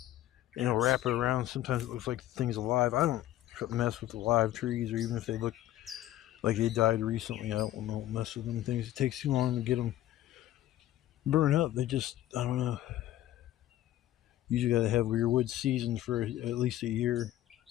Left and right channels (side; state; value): right; quieter; 13.7 dB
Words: and it'll wrap it around. Sometimes it looks like the thing's alive. I don't mess with live trees, or even if they look like they died recently, I don't mess with them things. It takes too long to get them burn up. They just, I don't know. Usually gotta have your wood seasoned for at least a year.